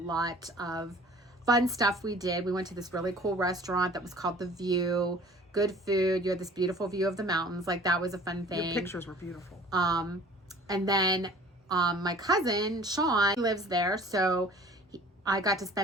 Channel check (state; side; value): normal; both; correlation 0.48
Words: of fun stuff we did. We went to this really cool restaurant that was called The View. Good food. You had this beautiful view of the mountains. Like, that was a fun thing. Your pictures were beautiful. And then my cousin Sean lives there, so I got to